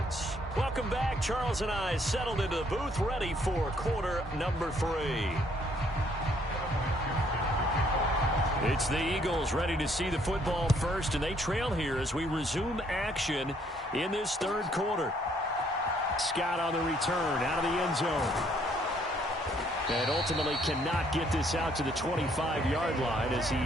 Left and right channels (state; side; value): normal; both; correlation 0.66